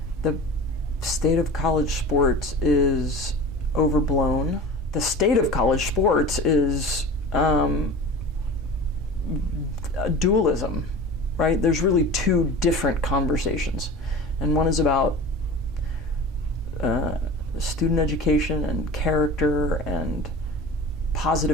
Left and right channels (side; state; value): both; normal; correlation 0.35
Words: state of college sports is overblown. The state of college sports is dualism, right? There's really two different conversations. And one is about student education and character and